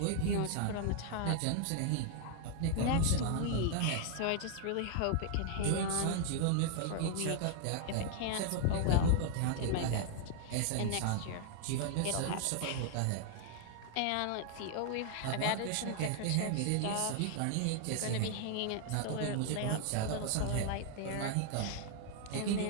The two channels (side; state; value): both; different; correlation 0.00